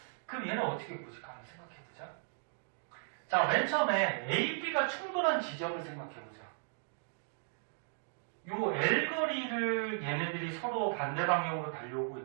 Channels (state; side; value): silent; left; digital silence